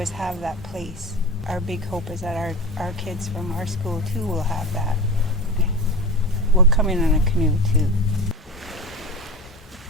have that place. Our big hope is that our kids from our school too will have that. We'll come in on a canoe too.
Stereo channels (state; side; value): normal; both; correlation 0.29